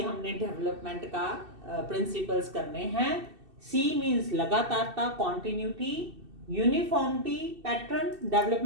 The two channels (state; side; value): late; left; 2.7 ms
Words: डेवलपमेंट का प्रिंसिपल्स करने हैं। सी मीन्स लगातारता, कॉन्टिन्यूटी, यूनिफॉर्मिटी, पैटर्न,